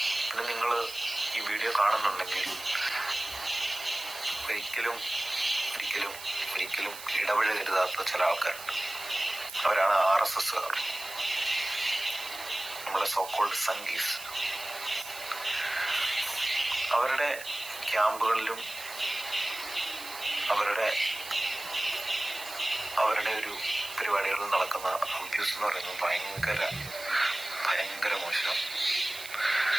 പിന്നെ നിങ്ങൾ ഈ വീഡിയോ കാണുന്നുണ്ടെങ്കിൽ ഒരിക്കലും ഒരിക്കലും ഒരിക്കലും ഇടപഴകരുതാത്ത ചില ആൾക്കാരുണ്ട്. അവരാണ് RSSകാർ, നമ്മളെ സോക്കോൾഡ് സംഗീസ്. അവരുടെ ക്യാമ്പുകളിലും അവരുടെ ഒരു പരിപാടികളിൽ നടക്കുന്ന അബ്യൂസ് എന്ന് പറയുന്നത് ഭയങ്കര മോശം,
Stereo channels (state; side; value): noise; right; hiss, 12 dB below the sound